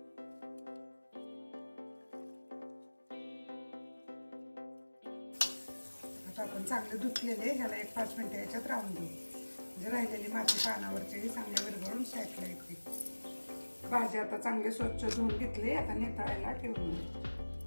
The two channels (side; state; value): both; inverted; correlation -1.00